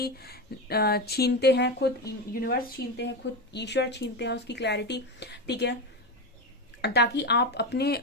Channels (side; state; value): both; normal; correlation 0.16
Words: छीनते हैं खुद यूनिवर्स, छीनते हैं खुद ईश्वर, छीनते हैं उसकी क्लैरिटी, ठीक है, ताकि आप अपने